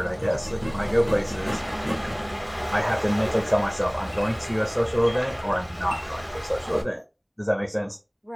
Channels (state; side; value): identical; both; correlation 1.00